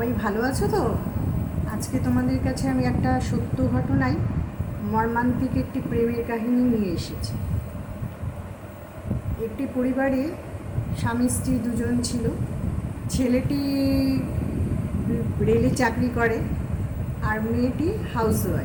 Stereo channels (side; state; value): both; identical; correlation 1.00